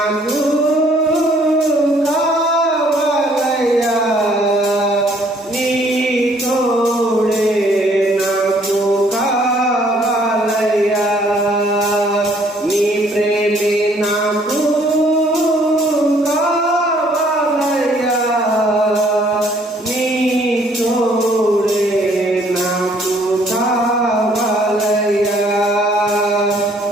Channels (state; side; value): normal; both; correlation 0.62